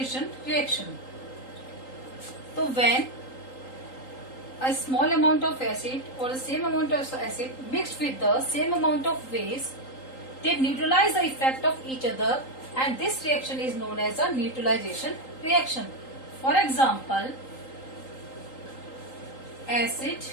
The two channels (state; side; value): late; right; 3.8 ms